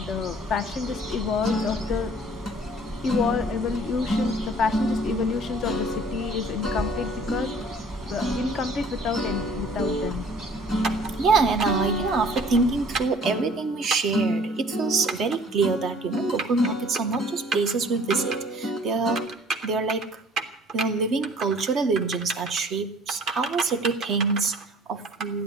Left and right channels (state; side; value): normal; both; correlation 0.52